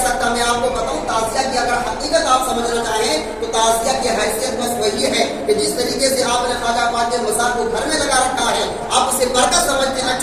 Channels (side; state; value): both; identical; correlation 1.00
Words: سکتا. میں آپ کو بتاؤں، تعزیہ کی اگر حقیقت آپ سمجھنا چاہیں تو تعزیہ کی حیثیت بس وہی ہے کہ جس طریقے سے آپ نے خواجہ پاک کے مزار کو گھر میں لگا رکھا ہے، آپ اسے برکت سمجھتے ہیں،